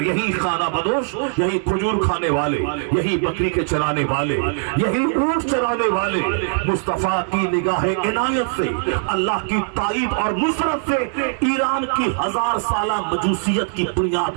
یہی خانہ بدوش، یہی کھجور کھانے والے، یہی بکری کے چرانے والے، یہی اونٹ چرانے والے مصطفیٰ کی نگاہ عنایت سے، اللہ کی تائید اور نصرت سے ایران کی 1000 سالہ مجوسیت کی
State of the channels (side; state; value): left; silent; 65 dB below the other